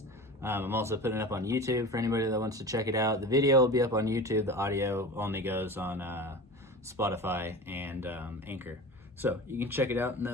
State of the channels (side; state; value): both; normal; correlation 0.33